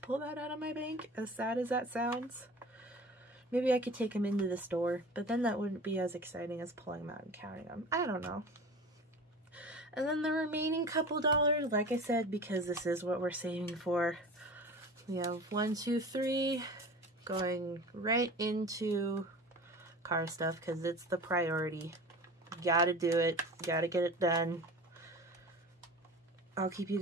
that out of my bank, as sad as that sounds. Maybe I could take them into the store, but then that wouldn't be as exciting as pulling them out and counting them. I don't know. And then the remaining couple dollars, like I said, because this is what we're saving for, we have 1, 2, 3 going right into car stuff because it's the priority. Gotta do it. Gotta get it done. I'll keep you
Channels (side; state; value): both; normal; correlation 0.37